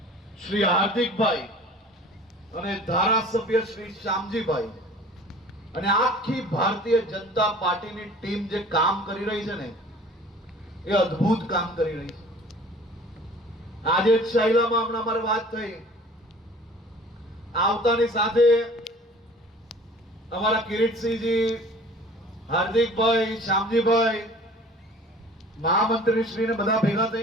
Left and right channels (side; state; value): both; normal; correlation 0.47